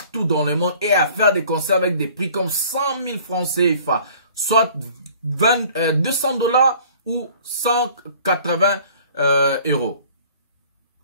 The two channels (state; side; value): inverted; both; correlation -0.52